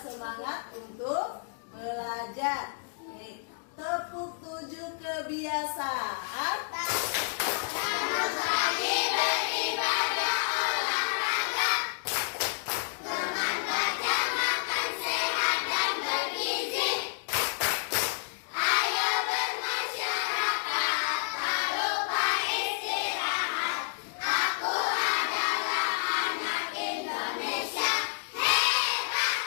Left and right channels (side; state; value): right; silent; digital silence